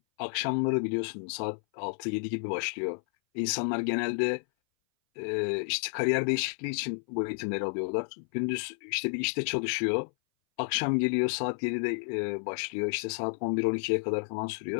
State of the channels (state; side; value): silent; right; 57 dB below the other